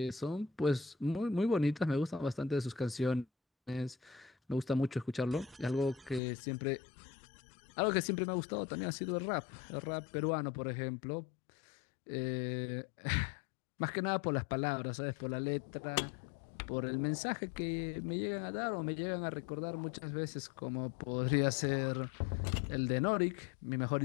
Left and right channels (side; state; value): right; drops out; at 6.2 s